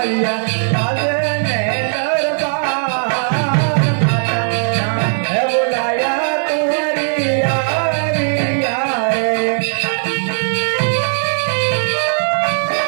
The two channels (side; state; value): left; silent; 68 dB below the other